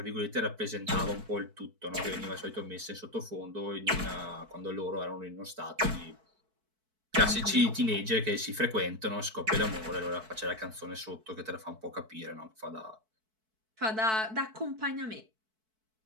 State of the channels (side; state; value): left; late; 4.6 ms